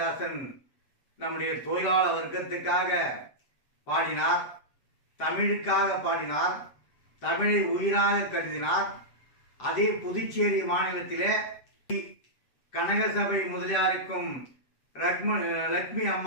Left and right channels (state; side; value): late; right; 7.8 ms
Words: நம்முடைய தொழிலாளர் வர்க்கத்துக்காக பாடினார், தமிழுக்காக பாடினார், தமிழை உயிராக கருதினார். அதே புதுச்சேரி மாநிலத்திலே கனகசபை முதலியாருக்கும் லட்சுமி